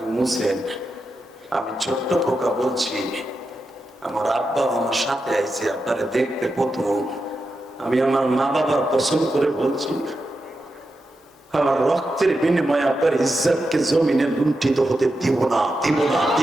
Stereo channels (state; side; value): normal; both; correlation 0.88